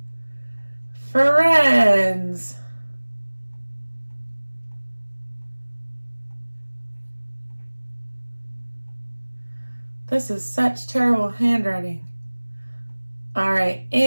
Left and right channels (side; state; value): both; inverted; correlation -1.00